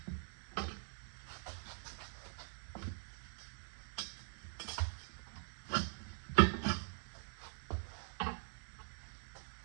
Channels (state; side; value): silent; left; digital silence